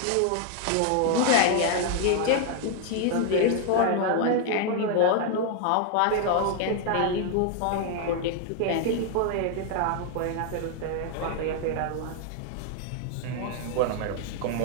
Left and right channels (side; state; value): both; different; correlation 0.00